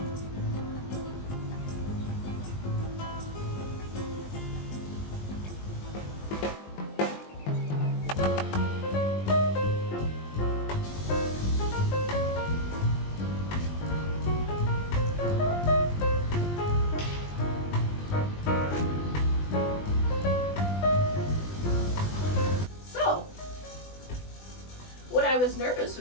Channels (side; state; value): right; late; 20 ms